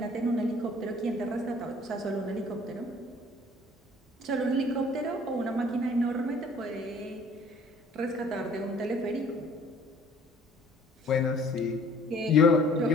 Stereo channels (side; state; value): both; normal; correlation 0.54